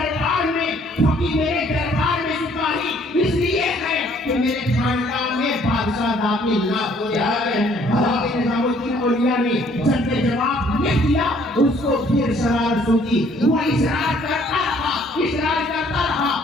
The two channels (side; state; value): both; normal; correlation 0.61